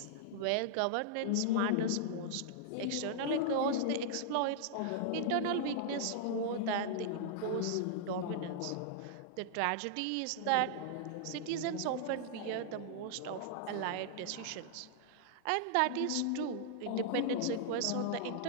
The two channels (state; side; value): different; both; correlation -0.01